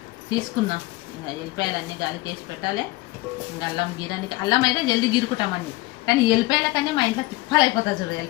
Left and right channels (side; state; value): right; quieter; 20.5 dB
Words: తీసుకున్నాం. ఇంకా ఎల్లిపాయలన్నీ గాలికి వేసి పెట్టాలి. ఇంకా అల్లం గీరానికి అల్లం అయితే జల్దీ గీరుకుంటామండి, కానీ ఎల్లిపాయల కన్నా మా ఇంట్లో తిప్పాలు అయిపోతుంది చూడు